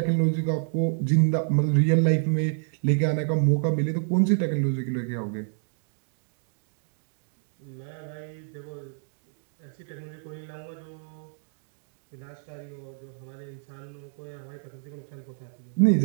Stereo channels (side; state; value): left; silent; 59 dB below the other